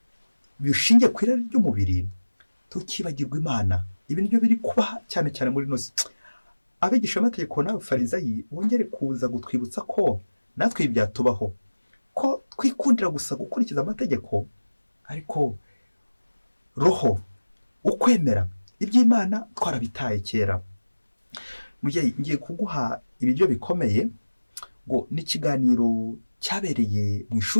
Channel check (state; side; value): inverted; both; correlation -1.00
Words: bishingiye ku irari ry'umubiri, tukibagirwa Imana. ibi nibyo biri kuba cyane cyane muri ino si. abigisha amategeko n'abafarizayi bongere kuza gutwibutsa ko natwe ibi byatubaho, ko twikundira gusa gukurikiza amategeko, ariko roho, ukwemera iby'Imana twarabitaye kera. ngiye kuguha ibiryo bikomeye, ngo n'ikiganiro cyabereye mu